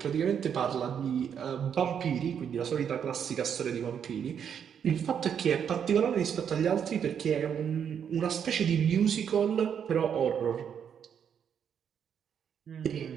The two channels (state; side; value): quieter; left; 8.0 dB